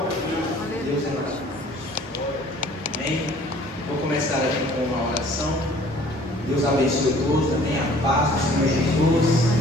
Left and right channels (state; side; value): normal; both; correlation 0.53